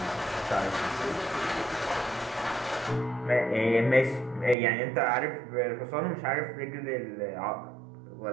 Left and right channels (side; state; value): left; drops out; at 4.5 s